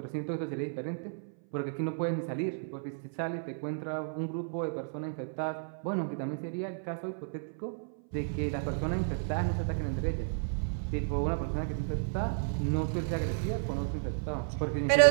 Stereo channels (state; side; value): silent; left; 56 dB below the other